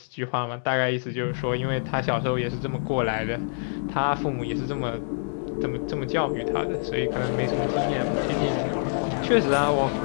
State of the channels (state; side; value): silent; right; digital silence